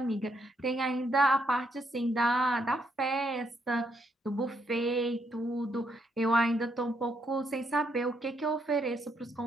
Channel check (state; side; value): normal; both; correlation 0.75